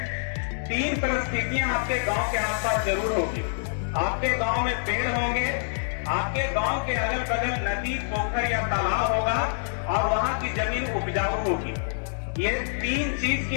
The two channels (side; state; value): right; silent; digital silence